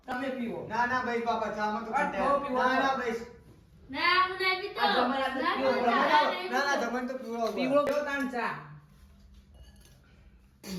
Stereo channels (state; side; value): identical; both; correlation 1.00